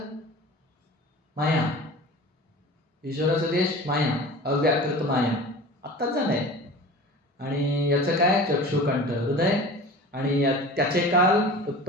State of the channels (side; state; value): both; normal; correlation 0.37